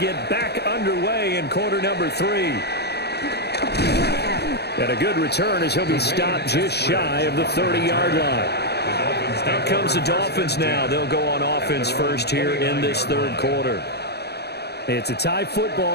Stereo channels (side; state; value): right; late; 0.48 ms